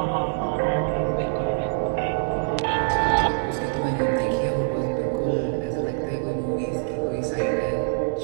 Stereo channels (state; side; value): silent; left; digital silence